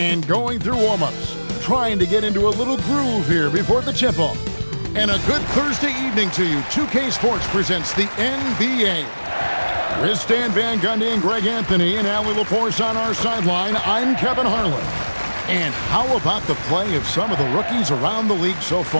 going through warm-ups, trying to get into a little groove here before the tip-off. And a good Thursday evening to you. 2K Sports presents the NBA. With Stan Van Gundy and Greg Anthony and Allie LaForce on our sideline, I'm Kevin Harlan. And how about the play of some of the rookies around the league so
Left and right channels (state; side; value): inverted; both; correlation -1.00